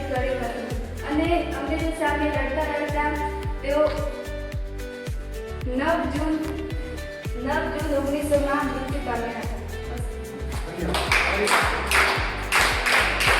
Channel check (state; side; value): identical; both; correlation 1.00